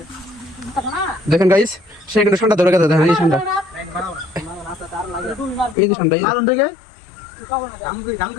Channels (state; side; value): drops out; right; at 5.8 s